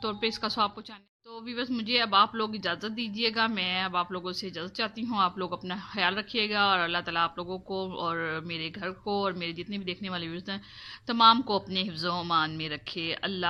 तौर पे इसका सवाब पहुँचाना। तो व्यूअर्स मुझे अब आप लोग इजाज़त दीजिएगा, मैं अब आप लोगों से इजाज़त चाहती हूँ। आप लोग अपना ख्याल रखिएगा, और अल्लाह ताला आप लोगों को और मेरे घर को और मेरे जितने भी देखने वाले व्यूअर्स हैं तमाम को अपने हिफ्ज़-ओ-अमान में रखे।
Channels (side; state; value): both; identical; correlation 1.00